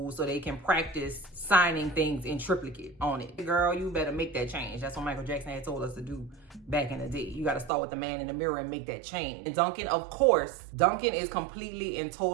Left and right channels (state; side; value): drops out; left; at 7.7 s